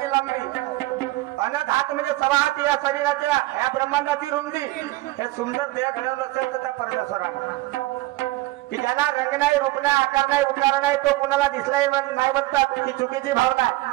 लांबी, अनंत हात म्हणजे 6 हात या शरीराच्या या ब्रह्मांडाची रुंदी. हे सुंदर देह घडवलं असेल तर त्या परमेश्वरा की ज्याला रंग नाही, रूप नाही, आकार नाही, उकार नाही, तो कुणाला दिसलाही नाही म्हणतात ती चुकीची भावना आहे.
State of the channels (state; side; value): quieter; left; 19.0 dB